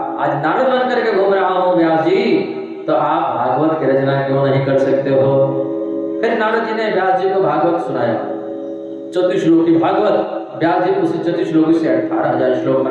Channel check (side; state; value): both; identical; correlation 1.00